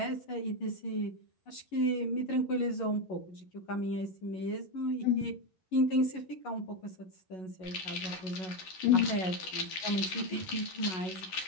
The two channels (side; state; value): right; late; 11 ms